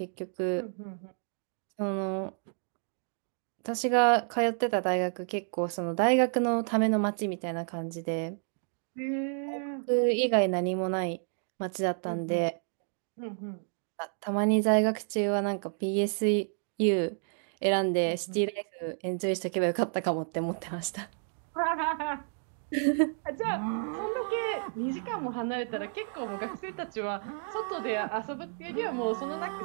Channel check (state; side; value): silent; left; 57 dB below the other